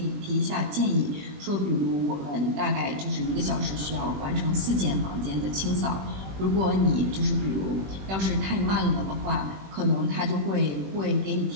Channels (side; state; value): left; late; 21 ms